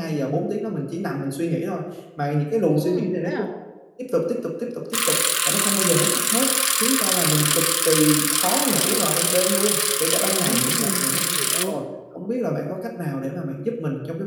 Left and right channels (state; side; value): identical; both; correlation 1.00